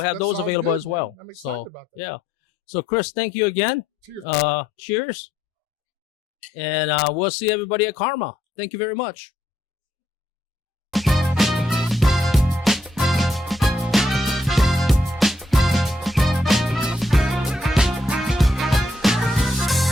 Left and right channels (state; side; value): normal; both; correlation 0.75